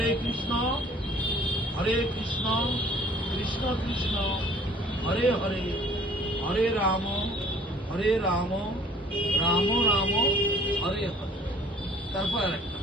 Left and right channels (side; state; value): both; normal; correlation 0.55